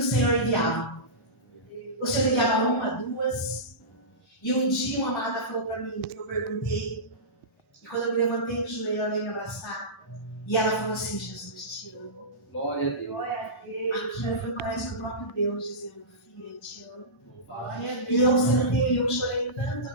Senhor enviava. O Senhor enviava uma, duas. E um dia uma amada falou para mim, eu perguntei. E quando eu me levantei do joelho, ela veio me abraçar. E ela falou assim: Jesus, te amo. Glória a Deus. Aquilo foi, parece que o próprio Deus dizendo: filha, te amo. Louvado. E eu sentei, eu chorei tanto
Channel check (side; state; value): both; normal; correlation -0.19